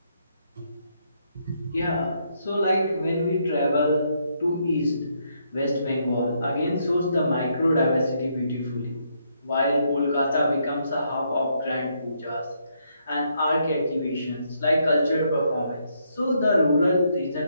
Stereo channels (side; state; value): both; inverted; correlation -0.75